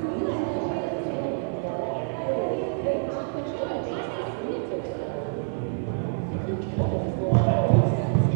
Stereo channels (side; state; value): left; silent; 60 dB below the other